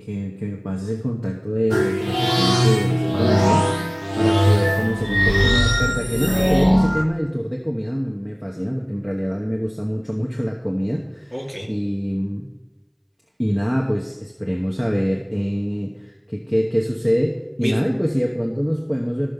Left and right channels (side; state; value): both; identical; correlation 1.00